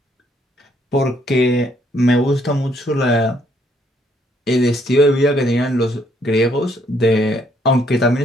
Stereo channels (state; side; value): normal; both; correlation 0.69